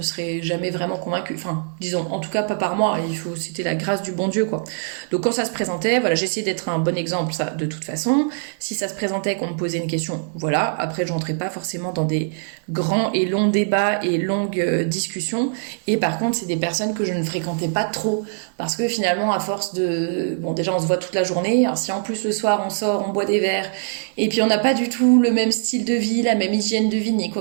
seraient jamais vraiment convaincues. Enfin, disons, en tout cas, pas par moi. C'était la grâce du bon Dieu, quoi. Donc, quand ça se présentait, voilà, j'essayais d'être un bon exemple, ça, de toute façon. Si ça se présentait qu'on me posait une question, voilà. Après, je rentrais pas forcément dans des grands et longs débats et longues discussions. Et par contre, c'est des personnes que je ne fréquentais pas trop. Parce que finalement, à force de... Bon, déjà, on se voit toute la journée. Alors, si en plus, le soir, on sort, on boit des verres, et puis on n'a pas du tout le même style de vie, la même hygiène de vie, ni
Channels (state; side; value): silent; left; 64 dB below the other